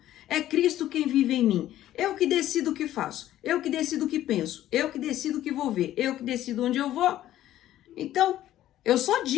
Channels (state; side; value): quieter; right; 13.2 dB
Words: é Cristo quem vive em mim, eu que decido o que faço, eu que decido o que penso, eu que decido o que vou ver, eu que decido onde eu vou, Então, eu só